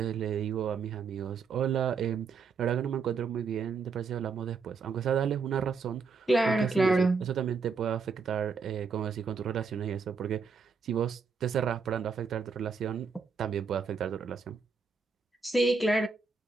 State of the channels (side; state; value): left; quieter; 5.0 dB